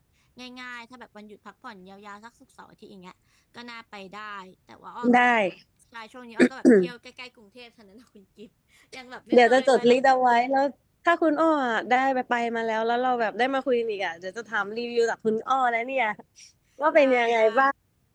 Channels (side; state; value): both; identical; correlation 1.00